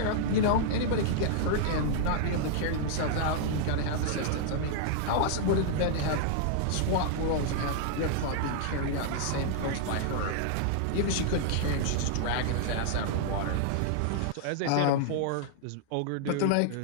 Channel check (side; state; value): both; different; correlation -0.01